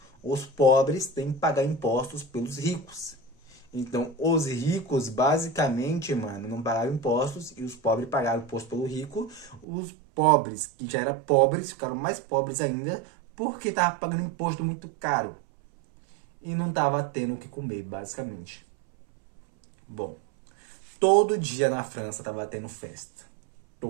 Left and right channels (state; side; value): drops out; left; at 9.7 s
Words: os pobres têm que pagar impostos pelos ricos. Então, os ricos, basicamente, mano, não pagaram impostos e os pobres pagaram imposto pelo rico. Os pobres, que já eram pobres, ficaram mais pobres ainda porque estavam pagando imposto muito caro. E não tava tendo o que comer, basicamente. Bom, todo dia na França tava tendo festa.